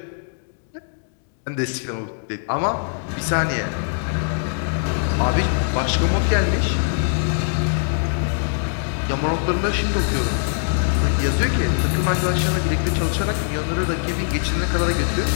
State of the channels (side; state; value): right; silent; digital silence